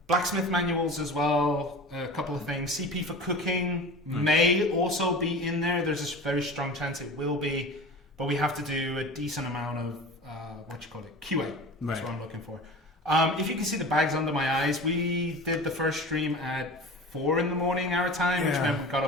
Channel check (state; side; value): normal; both; correlation 0.35